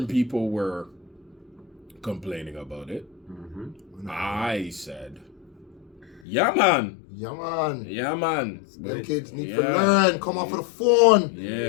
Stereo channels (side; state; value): right; drops out; at 6.2 s